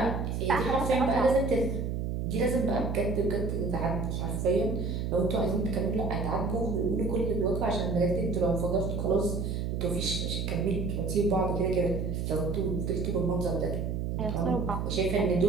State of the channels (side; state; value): right; noise; hum, 2 dB below the sound